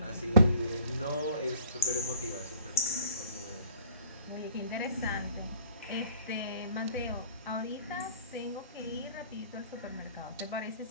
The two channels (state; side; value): inverted; both; correlation -0.52